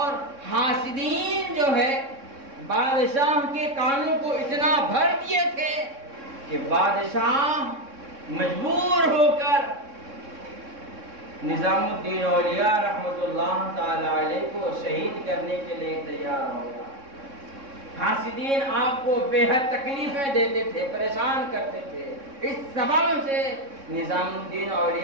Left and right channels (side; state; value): left; late; 3.6 ms